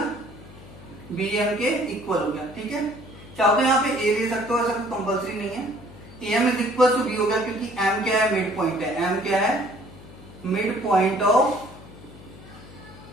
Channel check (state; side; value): noise; left; hum, 18 dB below the sound